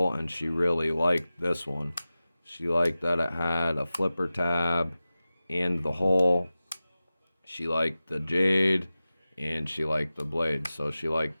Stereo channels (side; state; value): both; inverted; correlation -0.95